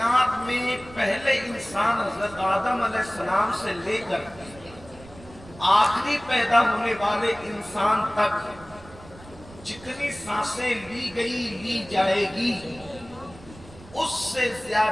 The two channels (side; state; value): right; noise; rumble, 20 dB below the sound